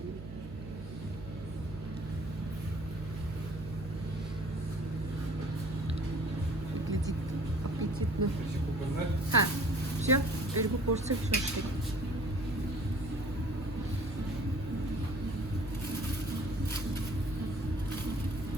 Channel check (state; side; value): noise; right; hum, 12 dB below the sound